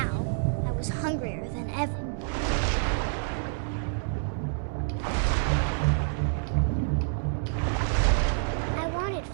I was hungrier than ever. I wanted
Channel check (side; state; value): left; silent; 59 dB below the other